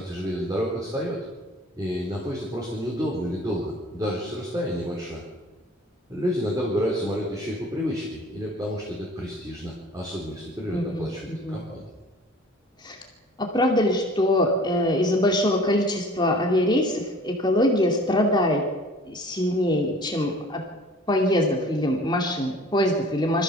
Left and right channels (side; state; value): both; normal; correlation 0.48